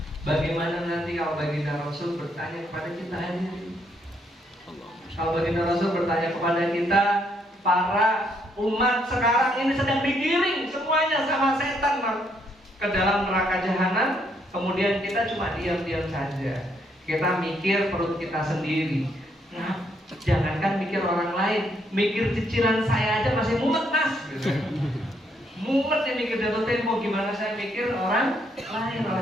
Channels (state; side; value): normal; both; correlation 0.73